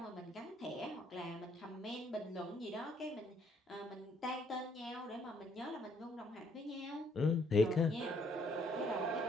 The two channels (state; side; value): normal; both; correlation 0.67